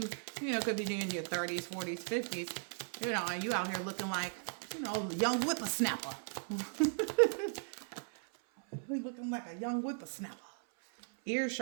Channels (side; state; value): left; silent; 53 dB below the other